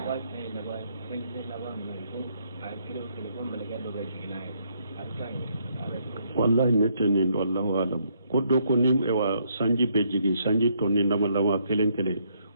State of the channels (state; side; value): inverted; both; correlation -0.72